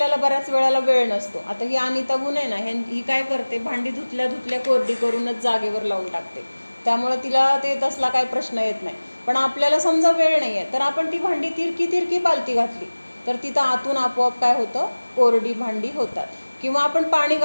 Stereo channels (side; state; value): both; inverted; correlation -1.00